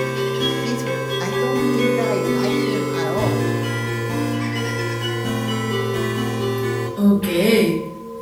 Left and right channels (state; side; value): identical; both; correlation 1.00